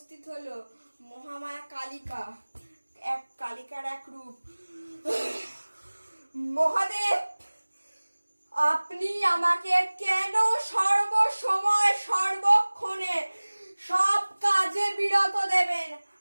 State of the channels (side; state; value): both; inverted; correlation -1.00